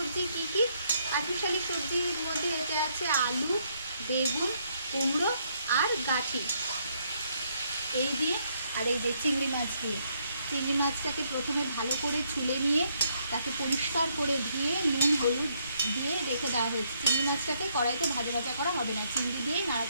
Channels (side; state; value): both; inverted; correlation -0.72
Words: কি কি? পাঁচমিশালি সবজির মধ্যে এতে আছে আলু, বেগুন, কুমড়ো আর গাঠি, এই দিয়ে আর এই যে চিংড়ি মাছ দিয়ে। চিংড়ি মাছটাকে প্রথমে ভালো করে ছুলে নিয়ে তাকে পরিষ্কার করে ধুয়ে নুন হলুদ দিয়ে রেখে দেওয়া হয়েছে। চিংড়ি মাছটাকে কড়াইতে ভাজা ভাজা করা হবে না, চিংড়ি দিয়েই